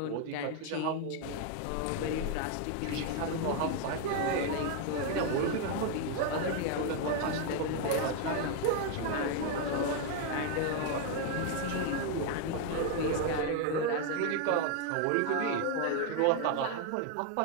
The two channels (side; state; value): both; different; correlation 0.01